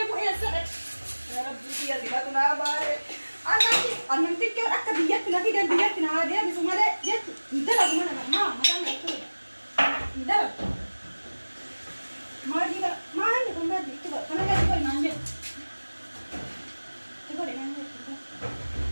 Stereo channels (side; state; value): both; inverted; correlation -1.00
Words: يا سلام يا رب يا زكاتنا بارك أنا تكير أكتر بيجتنا في ده بيجتنا هذا بس ما ده جت ندلع ما دام يكتب ندلع ما دي ما عندي كم بدي كتب أنا بدي كل ما عندي تقول إن عندي